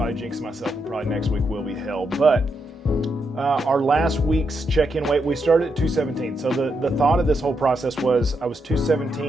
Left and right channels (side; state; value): both; normal; correlation 0.82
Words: jinxing myself, and probably next week will be hell. But our last week's check-in weight, we started at 217. So the thought of this whole process was I was